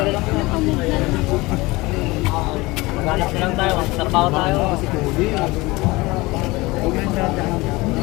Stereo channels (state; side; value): quieter; right; 22.0 dB